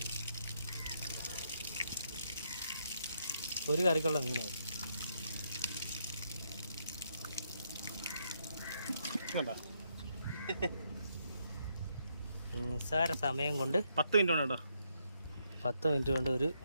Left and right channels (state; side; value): inverted; both; correlation -0.76